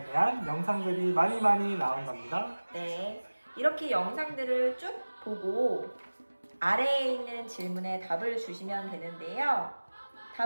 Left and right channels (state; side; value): inverted; both; correlation -1.00